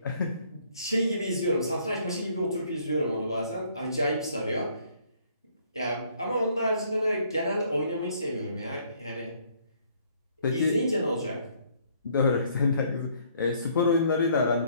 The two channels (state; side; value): inverted; both; correlation -0.64